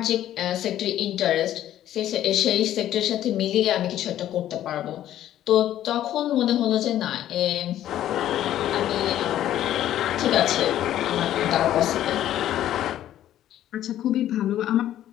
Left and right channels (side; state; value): right; quieter; 12.2 dB